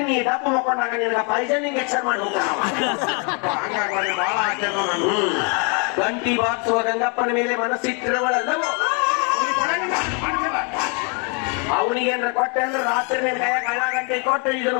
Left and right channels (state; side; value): quieter; right; 35.7 dB